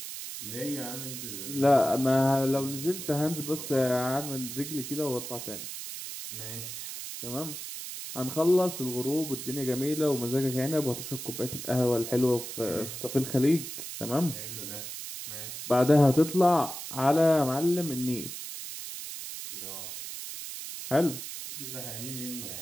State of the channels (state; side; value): noise; right; hiss, 8 dB below the sound